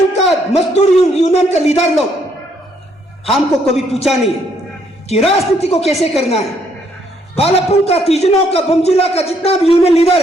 का मजदूर यूनियन का लीडर लोग हमको कभी पूछा नहीं है कि राजनीति को कैसे करना है। बालापुर का, तीजनों का, बमजिला का जितना भी यूनियन लीडर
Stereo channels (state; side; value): normal; both; correlation 0.70